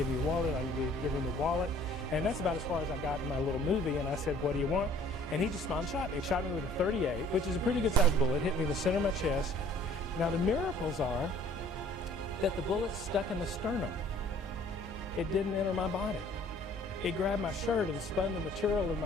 me your wallet. I'm going to give him the wallet. And that's about as far as I got in my little movie. And I said, what do you want? And he just smiled and shot me. He shot me with a .38, which is a pretty good-sized bullet. Hit me in the center of my chest. Now, the miracles are that the bullet stuck in the sternum. It didn't enter my body. It grabbed my shirt and spun the material in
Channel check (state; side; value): normal; both; correlation 0.55